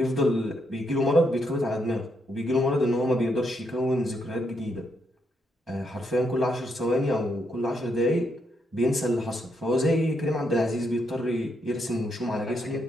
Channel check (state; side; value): normal; both; correlation 0.78